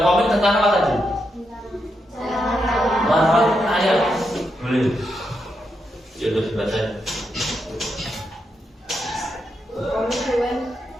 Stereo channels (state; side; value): normal; both; correlation 0.83